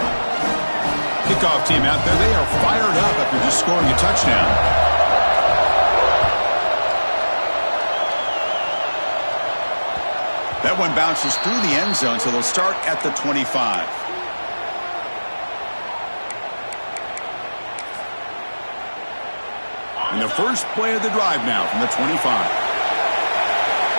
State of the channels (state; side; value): inverted; both; correlation -1.00